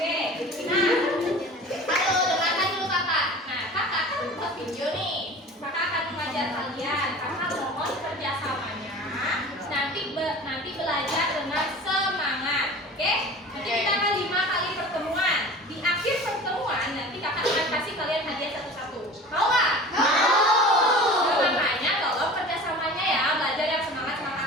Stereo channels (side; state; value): both; normal; correlation 0.39